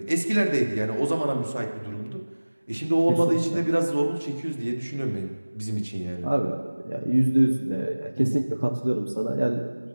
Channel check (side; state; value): both; inverted; correlation -1.00